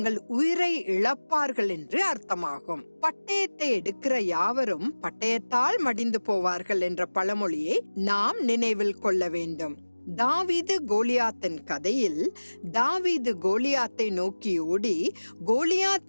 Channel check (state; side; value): inverted; both; correlation -1.00